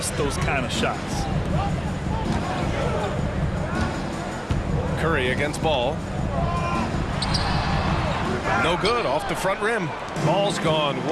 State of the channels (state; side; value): identical; both; correlation 1.00